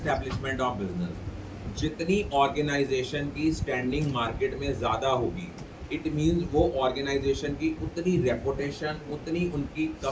ऑफ बिजनेस। जितनी ऑर्गेनाइजेशन की स्टैंडिंग मार्केट में ज़्यादा होगी, इट मीन्स वो ऑर्गेनाइजेशन की उतनी रेपुटेशन, उतनी उनकी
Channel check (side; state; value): both; identical; correlation 1.00